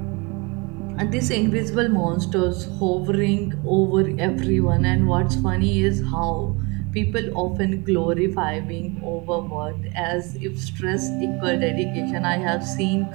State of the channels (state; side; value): quieter; left; 28.1 dB